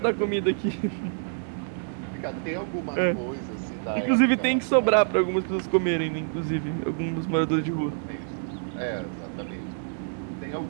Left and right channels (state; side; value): silent; left; 60 dB below the other